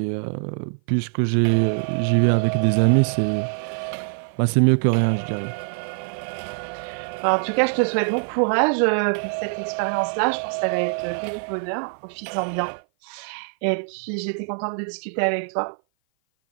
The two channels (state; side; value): silent; left; 56 dB below the other